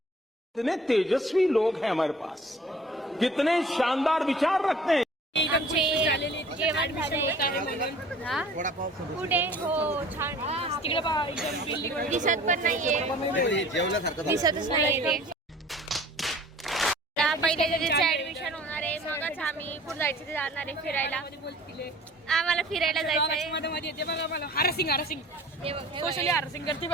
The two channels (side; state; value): both; normal; correlation 0.48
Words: कितने तेजस्वी लोग हैं हमारे पास, कितने शानदार विचार रखते हैं. आमचे जेवण झालंय. हा? कुठे? हो छान. तिकडे पहा, एकदम बिल्डिंग दिसत पण नाहीये, दिसतच नाहीये ते. आता पहिले त्याचं ऍडमिशन होणार आहे, मगच आम्ही पुढे जायचं ते जाणार आहे फिरायला. आम्हाला फिरायला जायचं आहे. मध्ये मध्ये येते बघा मला हरसिंग हे बघ, हे बघ. सोशली हरसिंग करते